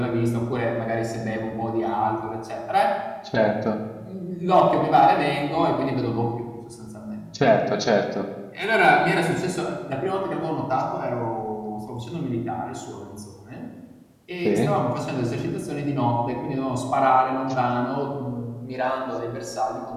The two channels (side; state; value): both; identical; correlation 1.00